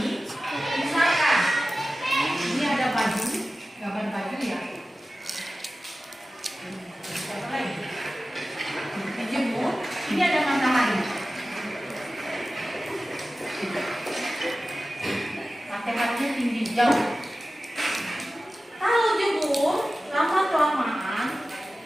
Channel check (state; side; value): normal; both; correlation 0.95